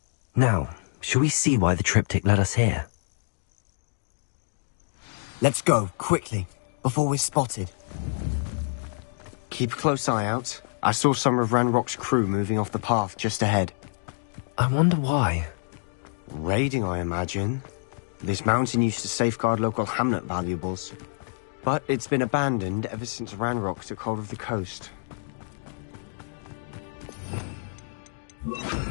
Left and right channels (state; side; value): silent; right; digital silence